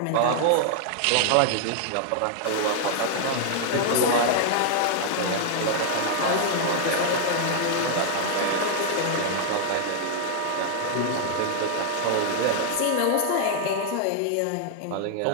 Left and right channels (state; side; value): different; both; correlation -0.01